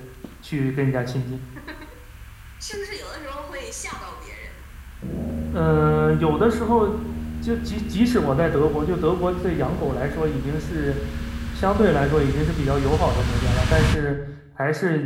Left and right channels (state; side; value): identical; both; correlation 1.00